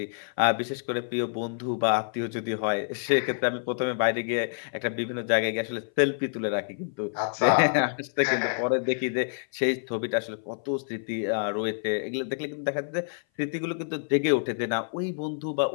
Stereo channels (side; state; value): right; silent; 57 dB below the other